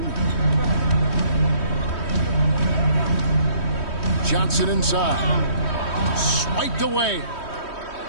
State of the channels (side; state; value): right; late; 3.1 ms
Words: Johnson inside. Swiped away.